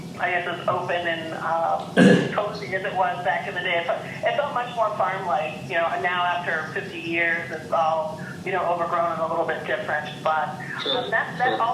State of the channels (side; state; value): both; identical; correlation 1.00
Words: I guess as open and cozy as it was back in the day. It felt much more farm-like. Now after 50 years, it's all overgrown and a little bit different. But that